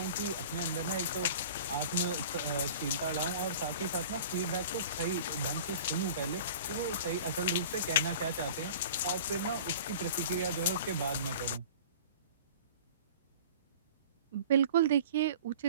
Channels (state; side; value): inverted; both; correlation -0.42